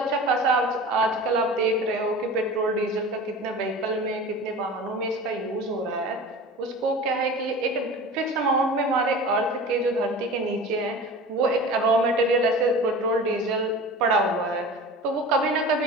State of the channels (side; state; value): both; normal; correlation 0.36